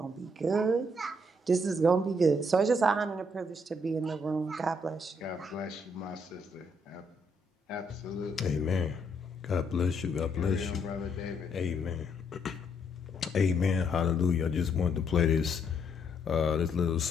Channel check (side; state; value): both; normal; correlation 0.73